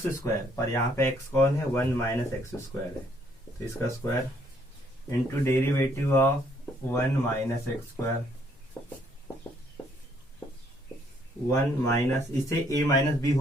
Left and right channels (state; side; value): normal; both; correlation 0.67